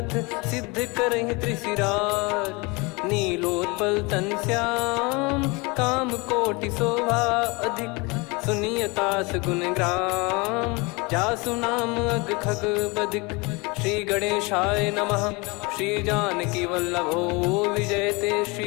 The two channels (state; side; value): quieter; right; 27.0 dB